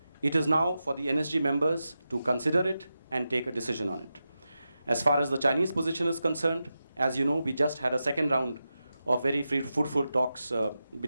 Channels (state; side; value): inverted; both; correlation -0.90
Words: It is now for the NSG members to consider it and take a decision on it. As far as the Chinese position is concerned, as you know, we just had a second round of very fruitful talks